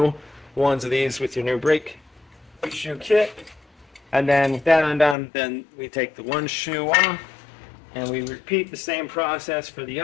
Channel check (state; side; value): drops out; right; at 5.2 s